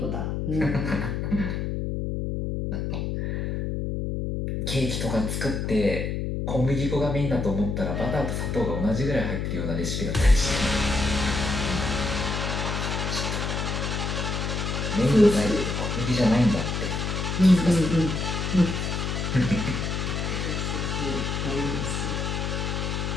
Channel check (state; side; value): noise; left; hum, 2 dB below the sound